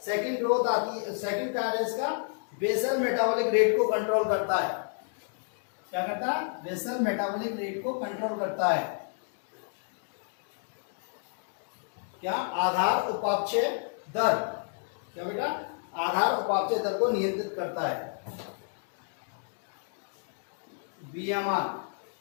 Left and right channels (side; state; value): right; silent; 57 dB below the other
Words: सेकंड ग्रोथ आती है, सेकंड क्या है इसका? बेसल मेटाबॉलिक रेट को कंट्रोल करता है। क्या करता है? बेसल मेटाबॉलिक रेट को कंट्रोल करता है। क्या? आधार उपापचय दर। क्या बेटा? आधार उपापचय दर को नियंत्रित करता है। BMR,